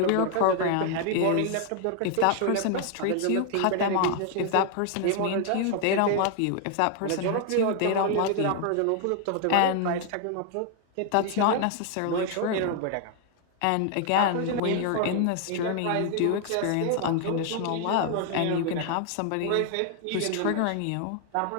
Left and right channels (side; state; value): both; different; correlation 0.00